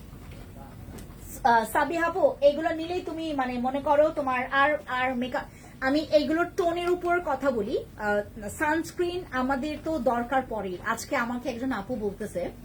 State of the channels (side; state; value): both; identical; correlation 1.00